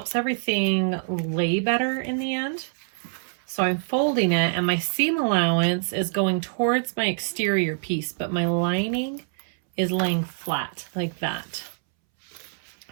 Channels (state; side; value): silent; left; 61 dB below the other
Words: everything lay better in the end. So I'm folding it and my seam allowance is going towards my exterior piece, but my lining is laying flat like that.